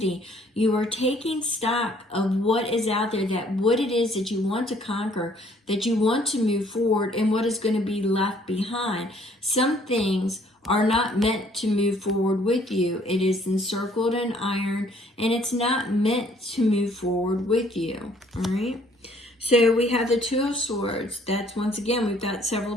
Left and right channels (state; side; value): normal; both; correlation 0.61